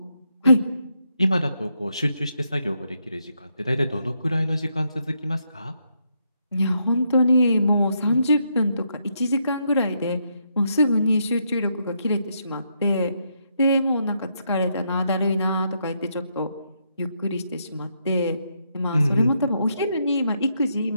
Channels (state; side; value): inverted; both; correlation -0.78